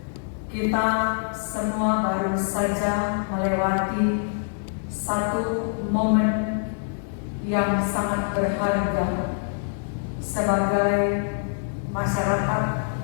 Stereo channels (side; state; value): right; silent; 62 dB below the other